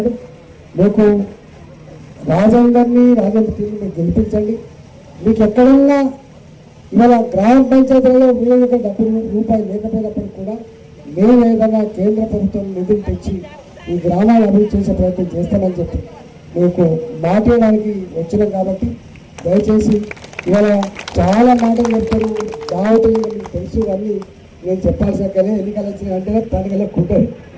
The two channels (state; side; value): identical; both; correlation 1.00